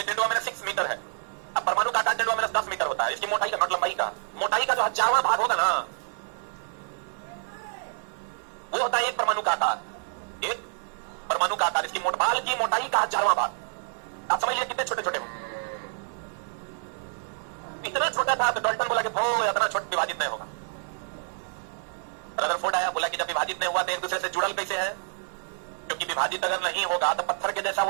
10⁻6 मीटर है। अब परमाणु का आकार 10⁻10 मीटर होता है। इसकी मोटाई का, नॉट लंबाई का, मोटाई का जो 1000वां भाग होगा ना, वो होता है एक परमाणु का आकार। एक परमाणु का आकार, इसकी बाल की मोटाई का 1000वां भाग। आप समझिए कितने छोटे छोटे हो। इतना छोटा था तो डाल्टन बोला कि इतना छोटा विभाजित नहीं होगा। रदरफोर्ड आया, बोला कि जब विभाजित नहीं हुआ तो एक दूसरे से जुड़ल कैसे है? क्योंकि विभाजित अगर नहीं होगा तो पत्थर के जैसा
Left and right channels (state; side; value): silent; left; 60 dB below the other